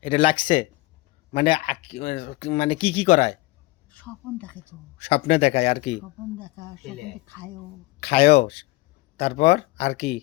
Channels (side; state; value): right; quieter; 20.4 dB